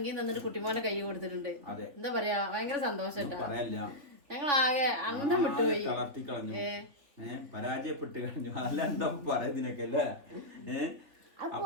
തന്നിട്ട് കുട്ടിമോനെ കൈ കൊടുത്തിട്ടുണ്ട്. എന്താ പറയാ, ഭയങ്കര സന്തോഷം. ഞങ്ങളാകെ അന്തം വിട്ടുപോയി, തളർത്തി കളഞ്ഞു, പരാജയപ്പെട്ട് കഴിഞ്ഞു. അല്ല എന്താ പറയുന്നതിനൊക്കെ അല്ലേ.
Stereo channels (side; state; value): left; late; 3.6 ms